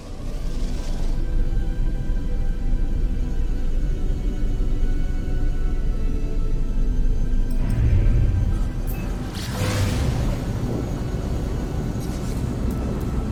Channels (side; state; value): both; identical; correlation 1.00